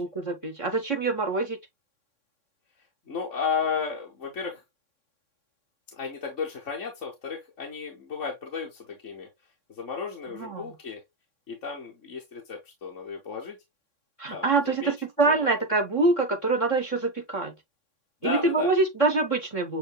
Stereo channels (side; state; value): right; late; 3.6 ms